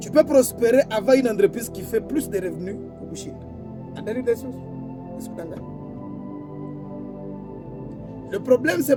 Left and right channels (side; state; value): both; identical; correlation 1.00